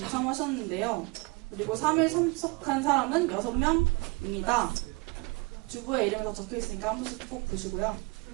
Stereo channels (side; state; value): left; quieter; 27.3 dB